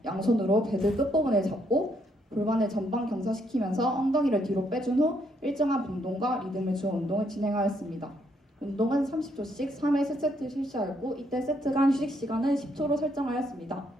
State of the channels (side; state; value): both; normal; correlation 0.73